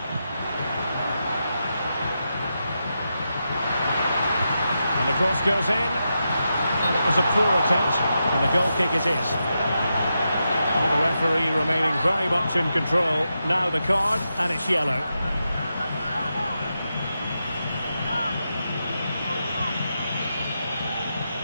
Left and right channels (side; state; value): both; inverted; correlation -0.87